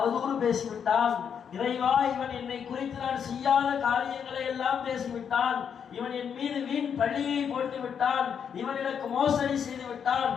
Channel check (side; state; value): right; quieter; 7.5 dB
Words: பேசிவிட்டான். இறைவா, இவன் என்னை குறித்து நான் செய்யாத காரியங்களை எல்லாம் பேசிவிட்டான், இவன் என் மீது வீண் பழியை போட்டு விட்டான், இவன் எனக்கு மோசடி செய்து விட்டான்,